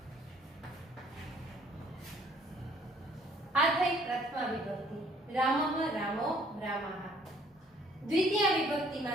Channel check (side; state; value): both; normal; correlation 0.60